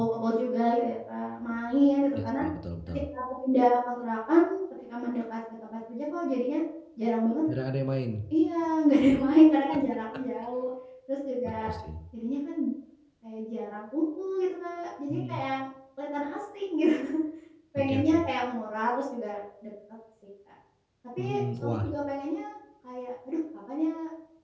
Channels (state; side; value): identical; both; correlation 1.00